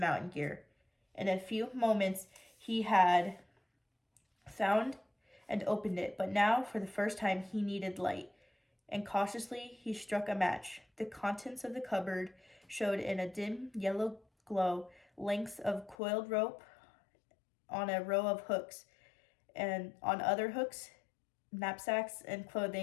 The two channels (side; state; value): right; drops out; at 16.0 s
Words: gear. In a few moments, he had found and opened it, but now, for the first time, he needed light, and cautiously he struck a match. The contents of the cupboard showed in a dim yellow glow lengths of coiled rope on a row of hooks, and on other hooks, knapsacks and